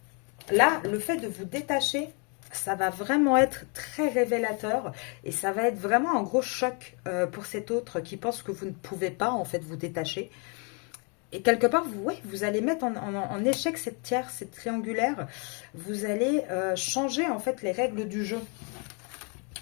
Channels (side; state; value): right; quieter; 35.8 dB